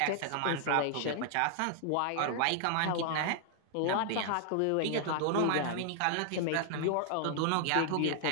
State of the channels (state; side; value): different; both; correlation 0.00